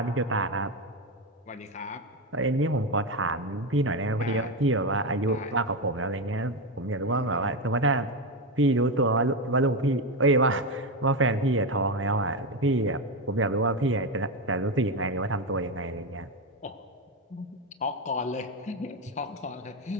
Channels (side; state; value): both; normal; correlation 0.12